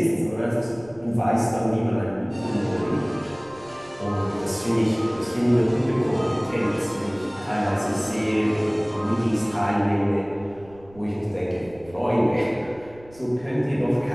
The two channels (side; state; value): right; noise; rumble, 24 dB below the sound